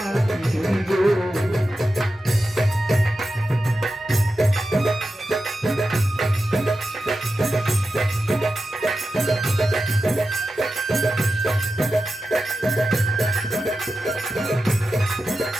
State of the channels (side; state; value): both; normal; correlation 0.92